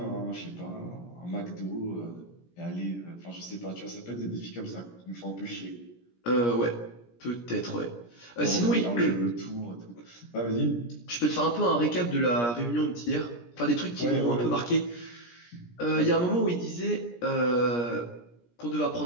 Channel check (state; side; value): late; right; 17 ms